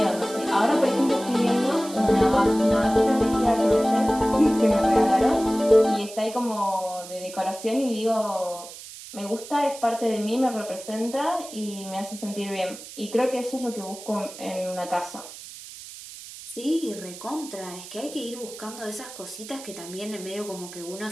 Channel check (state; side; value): noise; right; hiss, 14 dB below the sound